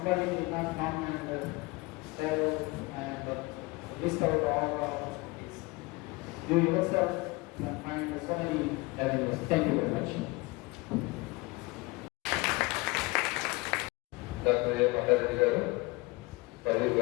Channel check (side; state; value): right; quieter; 23.6 dB